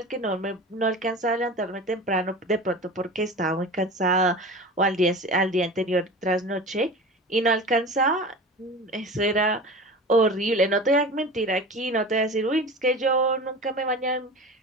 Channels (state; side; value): normal; both; correlation 0.34